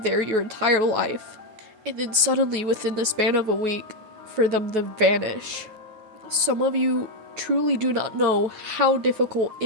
there your entire life. And then suddenly, within the span of a week, for them to vanish. Some of you truly do not know how difficult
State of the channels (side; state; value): left; late; 9.3 ms